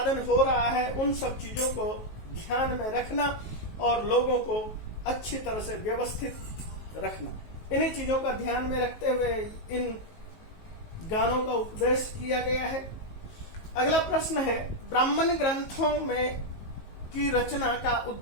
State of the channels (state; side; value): late; right; 19 ms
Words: हो रहा है, उन सब चीजों को ध्यान में रखना और लोगों को अच्छी तरह से व्यवस्थित रखना। इन्हीं चीजों का ध्यान में रखते हुए इन गानों का उपदेश किया गया है। अगला प्रश्न है, ब्राह्मण ग्रंथों में की रचना का